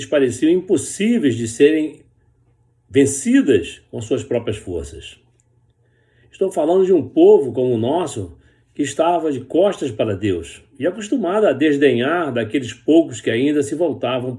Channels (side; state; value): both; identical; correlation 1.00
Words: pareciam impossíveis de serem vencidas com suas próprias forças. Estou falando de um povo como o nosso que estava de costas para Deus e acostumado a desdenhar daqueles poucos que ainda se voltavam